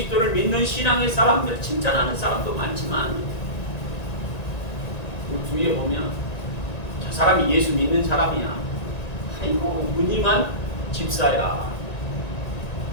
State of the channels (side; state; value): right; late; 1.9 ms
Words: 믿는 신앙의 사람들 칭찬하는 사람도 많지만 우리 주위에 보면 저 사람이 예수 믿는 사람이야. 아이고 무늬만 집사야.